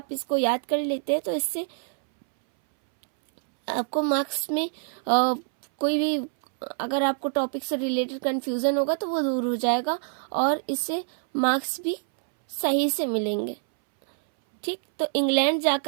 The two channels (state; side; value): silent; left; 61 dB below the other